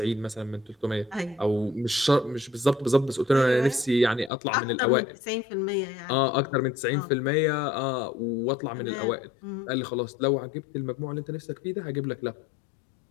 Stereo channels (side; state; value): right; drops out; at 4.3 s